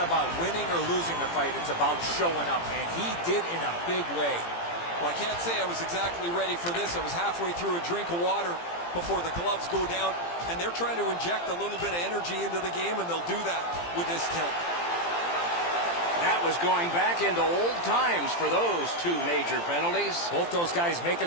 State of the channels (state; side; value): late; right; 17 ms